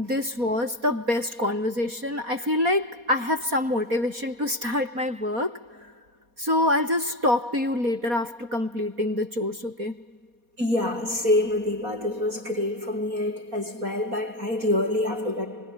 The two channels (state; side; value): late; left; 4.2 ms